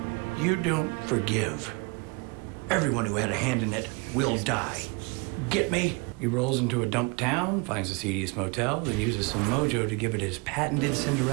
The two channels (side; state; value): left; quieter; 28.6 dB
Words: you don't forgive. Everyone who had a hand in it will die. Get me? He rolls into a dump town, finds the seediest motel, then uses some mojo to give it his patented